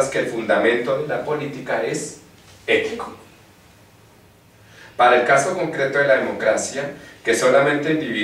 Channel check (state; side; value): identical; both; correlation 1.00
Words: que el fundamento de la política es ético. Para el caso concreto de la democracia, que solamente